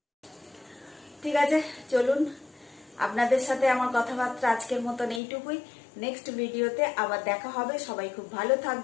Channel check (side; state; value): right; drops out; at 5.2 s